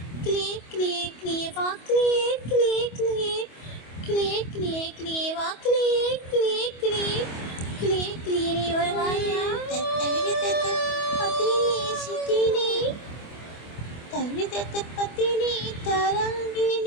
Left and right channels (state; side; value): late; right; 25 ms